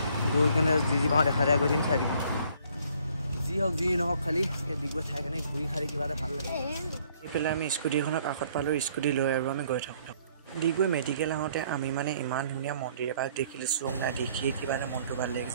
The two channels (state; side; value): inverted; both; correlation -0.62